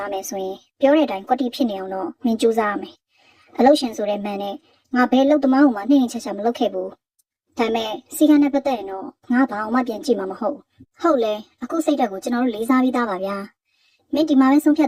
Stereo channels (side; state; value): both; identical; correlation 1.00